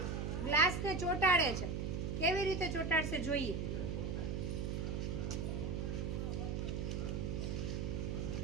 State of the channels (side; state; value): right; noise; hum, 1 dB below the sound